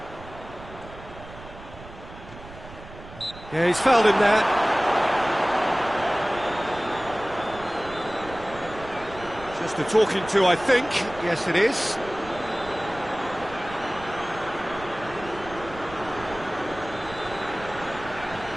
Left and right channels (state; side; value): noise; right; rumble, 16 dB below the sound